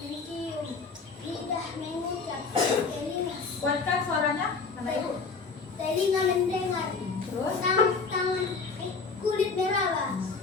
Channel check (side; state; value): right; quieter; 4.7 dB